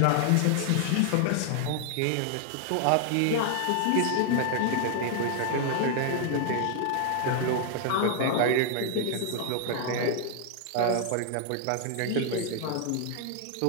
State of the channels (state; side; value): different; both; correlation 0.00